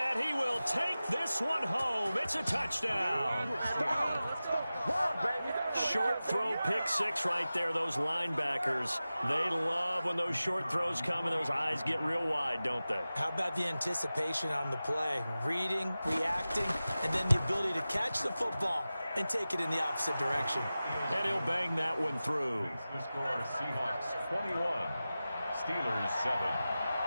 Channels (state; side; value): inverted; both; correlation -0.95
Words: he will take this one home. It's a touchdown. Short throw, pick six right there. Those linebackers, they love when those short throws come and those eyes get real wide, don't they? How about the anticipation on the play? Reading, reacting, and then the ability to catch the football and take it in the opposite direction. And he'll bang that one through. The score, Seahawks 21, Steelers 7.